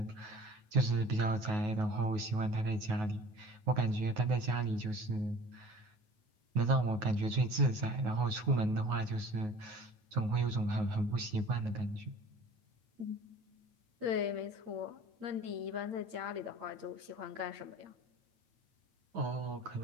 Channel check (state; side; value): late; left; 9.4 ms